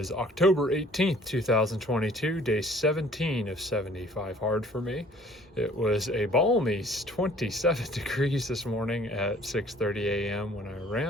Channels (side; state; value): both; normal; correlation 0.55